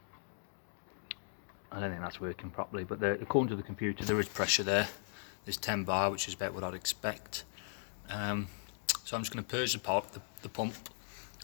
don't think that's working properly, but according to the computer, there is pressure there. There's 10 bar, which is about what I'd expect. So I'm just going to purge the pump,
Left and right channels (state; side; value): silent; right; digital silence